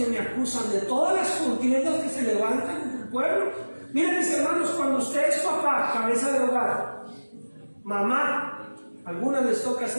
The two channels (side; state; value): both; inverted; correlation -1.00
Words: me acusan, de todas las contiendas que se levantan en el pueblo. Miren, mis hermanos, cuando usted es papá, cabeza de hogar, mamá, a algunas les toca